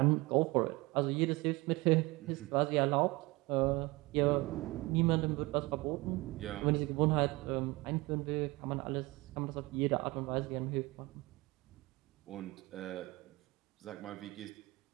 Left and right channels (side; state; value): left; quieter; 22.6 dB